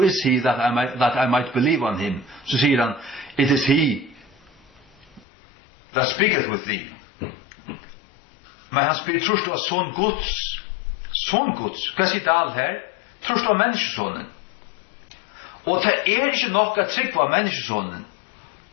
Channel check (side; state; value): right; drops out; at 5.2 s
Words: is he that I might believe on him? Så sier han, it is he that speaketh with thee. Men han spyr, trust du a son Guds? Son Guds? Hva sier det alt her? Trust du a menneskesonen? Og det ikke nok at trygg var menneskesonen.